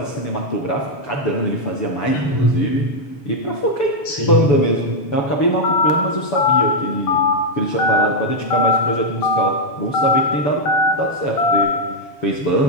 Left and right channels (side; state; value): right; late; 7.1 ms